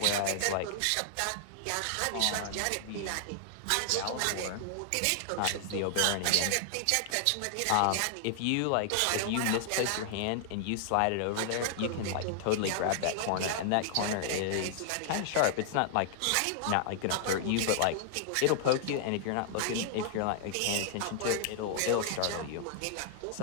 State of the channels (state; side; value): different; both; correlation 0.00